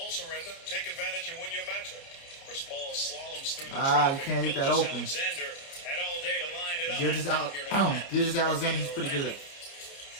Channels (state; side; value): late; right; 29 ms